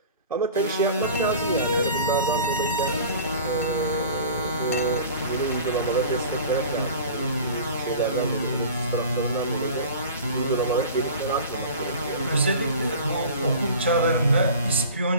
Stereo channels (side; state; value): both; inverted; correlation -0.40